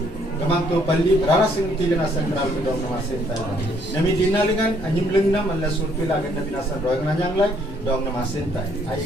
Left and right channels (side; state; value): both; normal; correlation 0.66